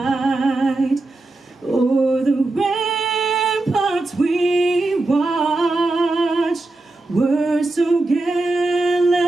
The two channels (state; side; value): quieter; left; 3.0 dB